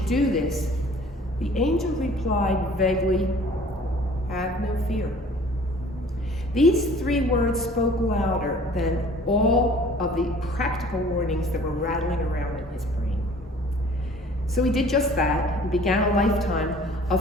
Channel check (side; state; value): both; normal; correlation 0.50